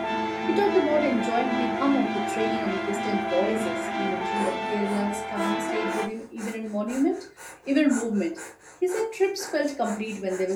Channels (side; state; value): both; identical; correlation 1.00